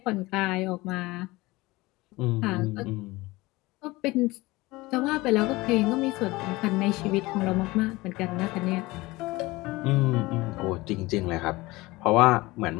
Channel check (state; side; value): quieter; right; 21.0 dB